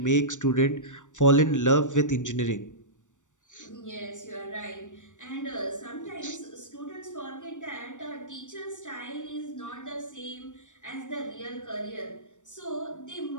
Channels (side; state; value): right; late; 0.86 ms